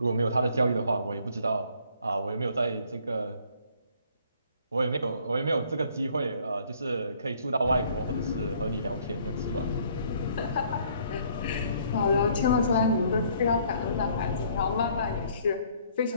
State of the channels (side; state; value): both; inverted; correlation -0.61